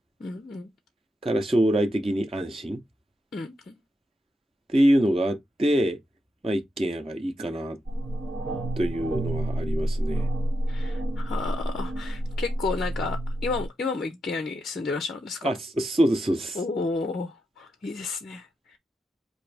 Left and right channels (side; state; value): both; normal; correlation 0.86